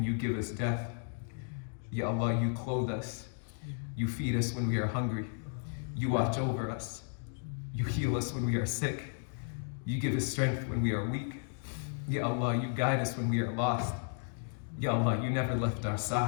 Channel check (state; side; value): silent; right; 55 dB below the other